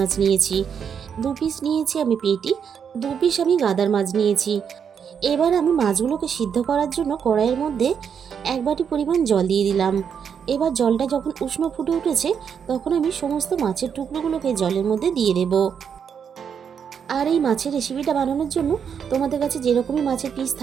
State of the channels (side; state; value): left; quieter; 7.4 dB